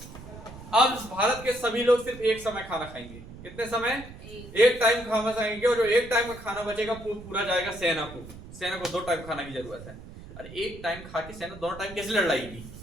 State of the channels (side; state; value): right; noise; rumble, 15 dB below the sound